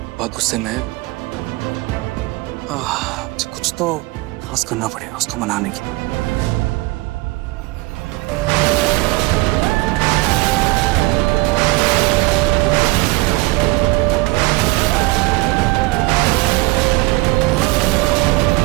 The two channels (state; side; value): quieter; left; 21.9 dB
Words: बहुत गुस्से में है। कुछ तो खास करना पड़ेगा उसको मनाने के लिए।